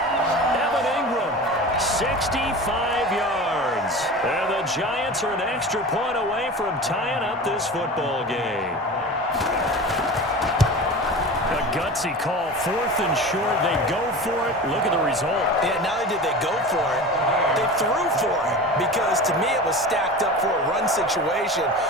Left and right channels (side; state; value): both; normal; correlation 0.33